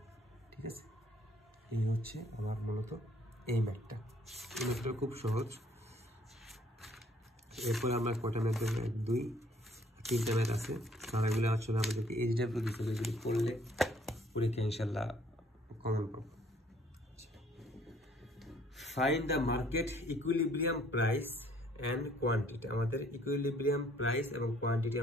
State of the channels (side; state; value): both; normal; correlation 0.61